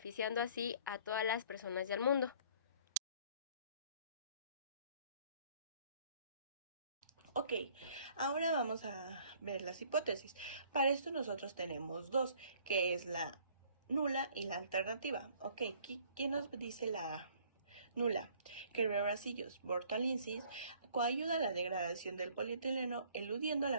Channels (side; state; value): both; inverted; correlation -0.57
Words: así a todas las personas del mundo. Ok, ahora vamos a ver las hipótesis. Para esto nosotros tenemos dos, que es la nula y la alternativa. Ok, ¿quién nos dice la nula? Que Bacillus burtonensis coayuda a la degradación del polietileno, eludiendo